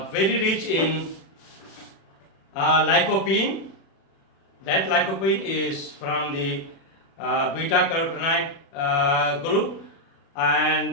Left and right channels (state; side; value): late; right; 36 ms